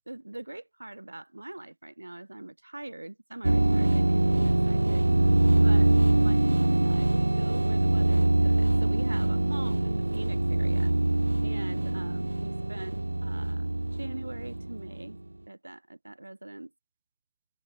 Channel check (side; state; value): both; inverted; correlation -1.00